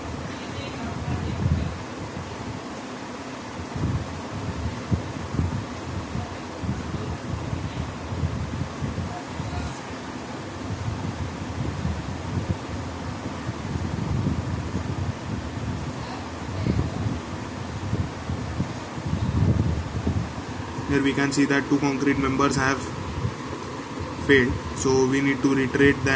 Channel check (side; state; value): both; identical; correlation 1.00